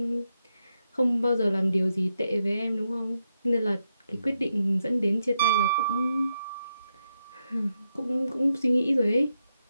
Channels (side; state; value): both; inverted; correlation -0.83